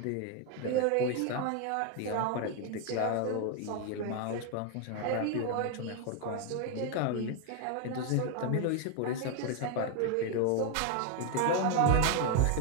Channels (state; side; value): different; both; correlation 0.01